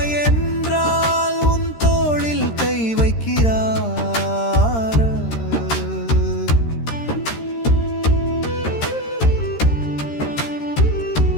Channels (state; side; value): late; right; 13 ms